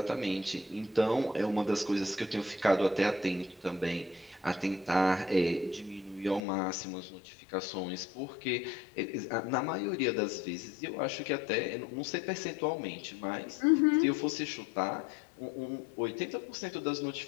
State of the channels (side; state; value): right; drops out; at 6.4 s